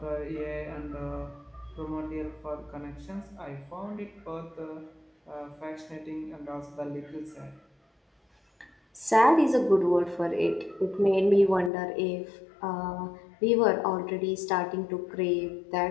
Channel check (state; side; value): drops out; right; at 11.7 s